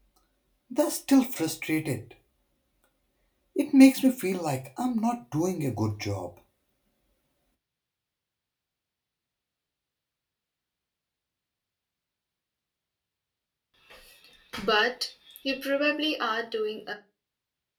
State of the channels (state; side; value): identical; both; correlation 1.00